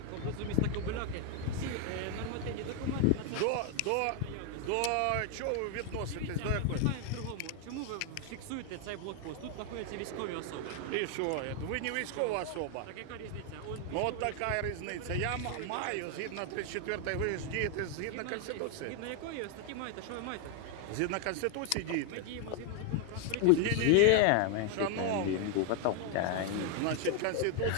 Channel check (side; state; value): both; different; correlation 0.01